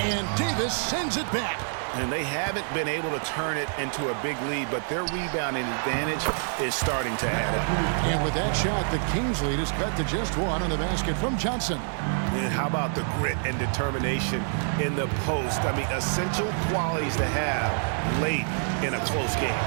And Davis sends it back. And they haven't been able to turn it into a big lead, but their rebounding advantage is starting to add up. And with that shot, the Kings lead is cut to just one on the basket from Johnson. And how about the grit and determination in the post? I mean, essential qualities to have late in a close game.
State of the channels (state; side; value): silent; left; digital silence